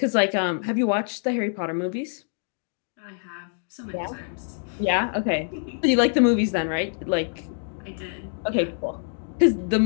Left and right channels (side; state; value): right; silent; digital silence